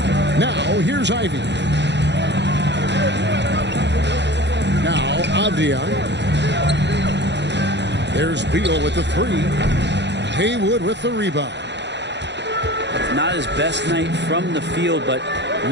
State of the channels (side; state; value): left; late; 0.51 ms